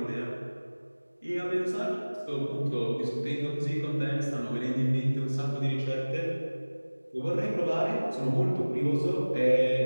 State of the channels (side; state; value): both; inverted; correlation -1.00